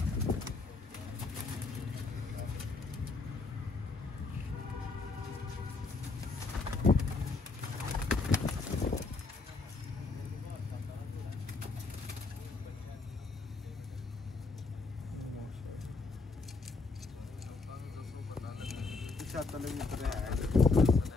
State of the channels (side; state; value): right; quieter; 3.9 dB